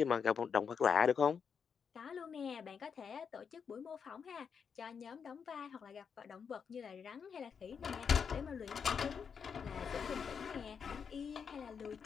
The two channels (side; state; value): right; quieter; 6.6 dB